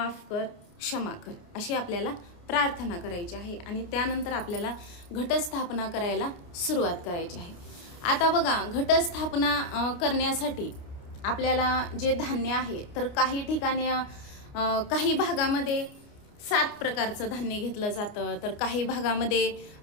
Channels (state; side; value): late; right; 29 ms